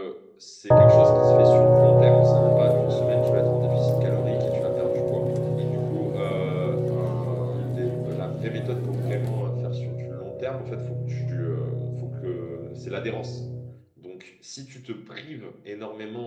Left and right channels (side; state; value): both; identical; correlation 1.00